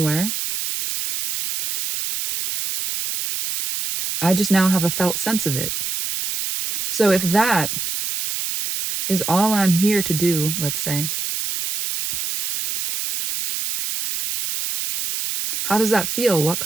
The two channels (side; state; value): right; noise; hiss, 3 dB below the sound